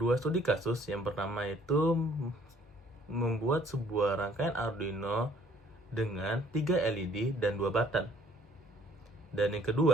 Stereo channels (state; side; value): normal; both; correlation 0.59